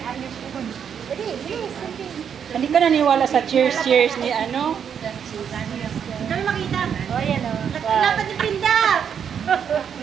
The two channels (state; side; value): quieter; left; 7.8 dB